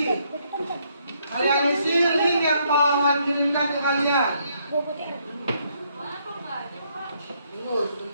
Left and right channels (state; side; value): inverted; both; correlation -0.71